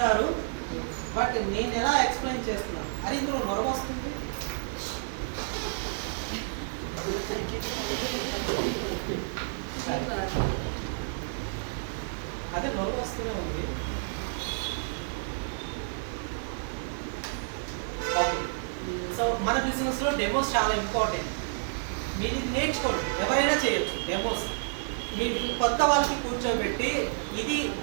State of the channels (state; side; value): silent; left; 55 dB below the other